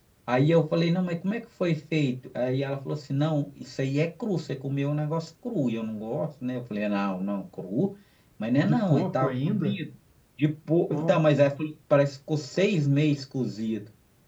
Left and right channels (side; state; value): both; identical; correlation 1.00